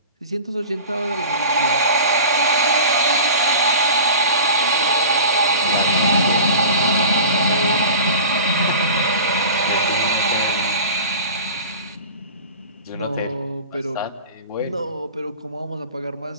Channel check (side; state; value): both; inverted; correlation -0.36